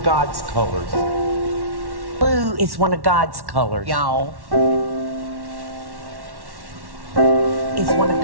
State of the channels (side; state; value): left; late; 1.1 ms